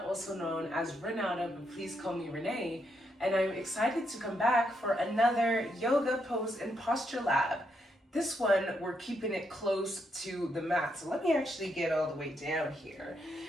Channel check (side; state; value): both; normal; correlation 0.79